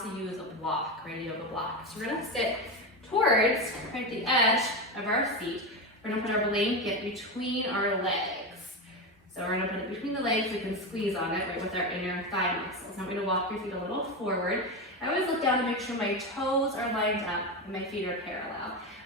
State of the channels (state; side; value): normal; both; correlation 0.16